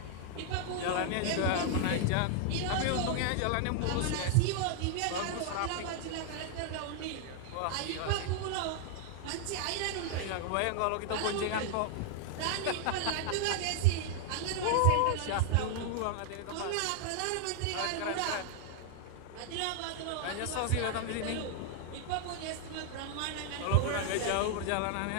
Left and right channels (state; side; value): different; both; correlation 0.00